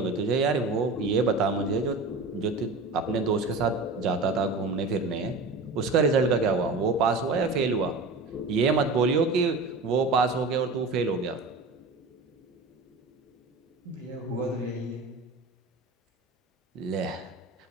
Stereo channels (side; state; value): left; quieter; 3.5 dB